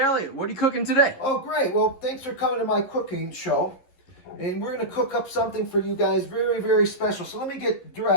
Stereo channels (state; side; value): late; right; 11 ms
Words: what are you cooking today? Oh, great. Well, thanks for coming to my cooking show. And we're going to cook up something for you guys very, very special. So let me get